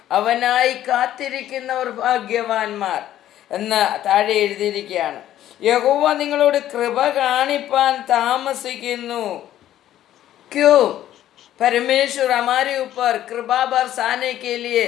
അവനായി കാത്തിരിക്കുന്നവർ ഭാഗ്യവാന്മാർ എന്ന് താഴെ എഴുതിയിരിക്കുകയാണ്. യഹോവ നിങ്ങളോട് കൃപ കാണിപ്പാൻ താമസിക്കുന്നു. क्यों? परमेश्वर हमारे ऊपर कृपा बरसाने के लिए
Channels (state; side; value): quieter; right; 12.4 dB